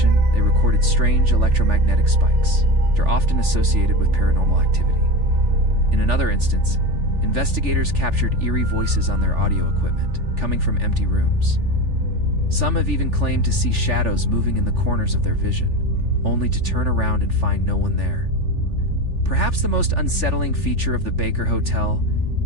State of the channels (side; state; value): left; late; 3.4 ms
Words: they recorded strange electromagnetic spikes that are often associated with paranormal activity. In another instance, investigators captured eerie voices on their audio equipment, coming from empty rooms. Some have even claimed to see shadows moving in the corners of their vision, only to turn around and find no one there. Perhaps the most unsettling feature of the Baker Hotel